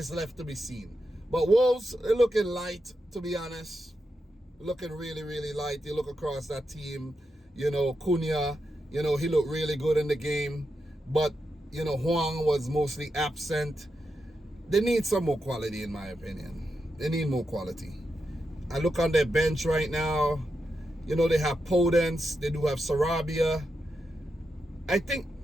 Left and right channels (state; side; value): normal; both; correlation 0.86